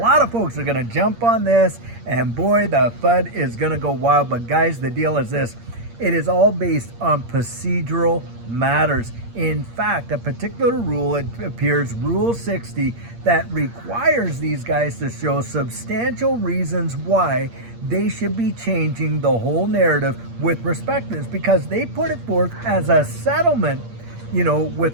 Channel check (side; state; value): left; late; 8.6 ms